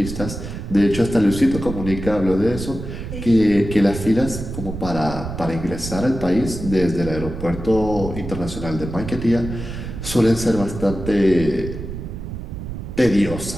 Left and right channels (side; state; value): right; noise; rumble, 8 dB below the sound